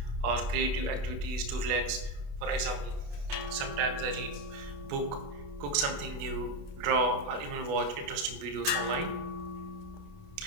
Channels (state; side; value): late; left; 28 ms